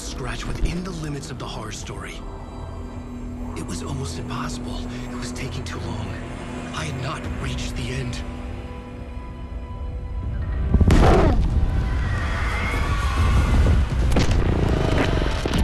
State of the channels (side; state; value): both; identical; correlation 1.00